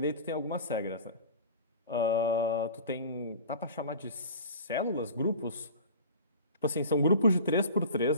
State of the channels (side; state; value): both; inverted; correlation -0.37